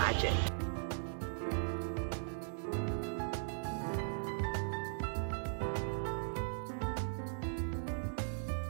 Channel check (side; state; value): left; silent; digital silence